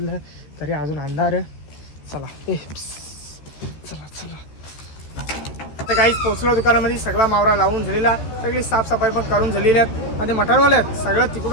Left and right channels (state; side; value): late; right; 14 ms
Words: तरी अजून अंधार चला चला आता काहीच पोचलो दुकानामध्ये सगळा मावरा लावून झालेला सगळी साफसफाई पण करून झालेली आहेत आणि मटणवाले आहेत सगळं तिकडून